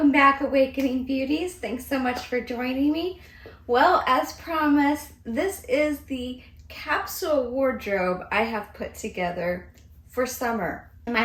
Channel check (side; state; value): both; identical; correlation 1.00